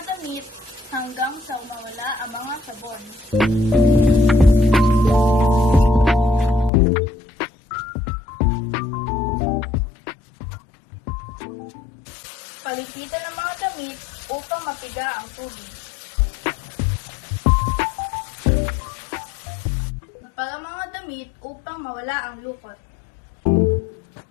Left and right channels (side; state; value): right; drops out; at 6.7 s